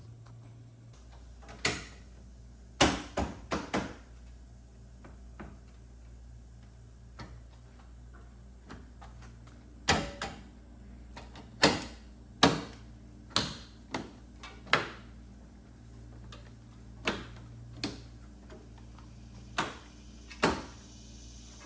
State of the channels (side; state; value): both; identical; correlation 1.00